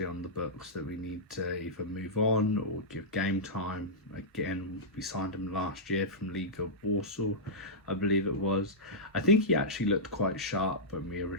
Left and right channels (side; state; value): both; normal; correlation -0.12